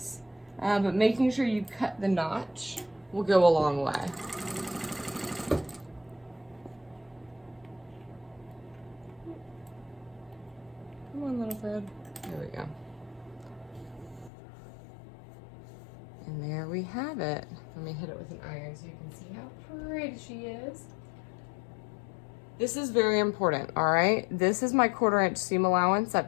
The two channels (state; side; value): drops out; right; at 14.3 s